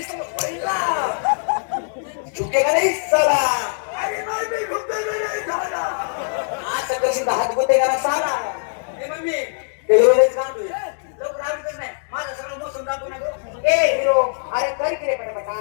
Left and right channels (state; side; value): silent; right; digital silence